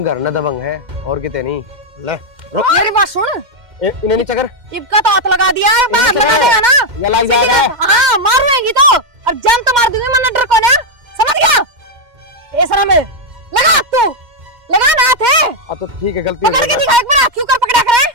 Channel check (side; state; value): left; late; 2.1 ms